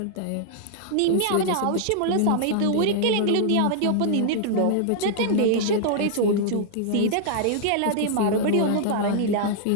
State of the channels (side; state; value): both; different; correlation -0.01